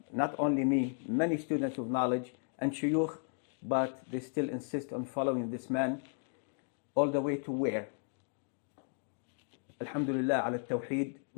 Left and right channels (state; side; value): silent; right; 55 dB below the other